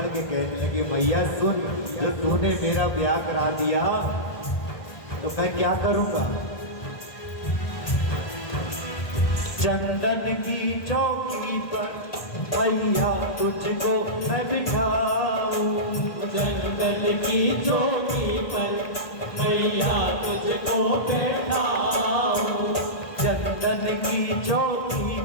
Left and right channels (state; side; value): late; right; 1.6 ms